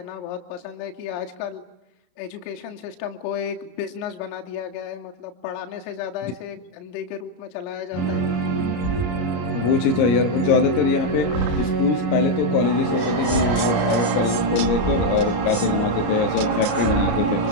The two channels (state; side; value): late; right; 33 ms